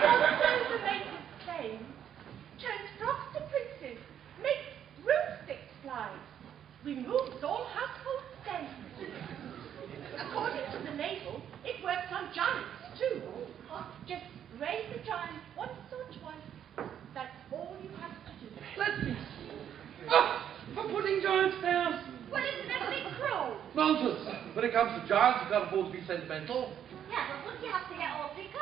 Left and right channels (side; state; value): left; quieter; 9.5 dB